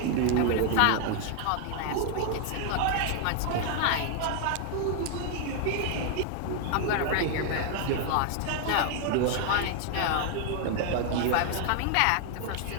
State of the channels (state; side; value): different; both; correlation 0.00